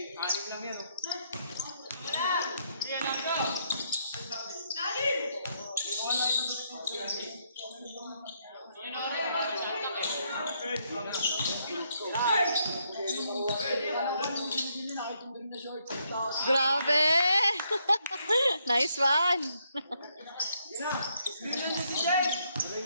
6 lang yan, oh. Yan lang to! Lagi! Grabe! Nice one! Screen na si Jay! Tuloy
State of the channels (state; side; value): inverted; both; correlation -0.74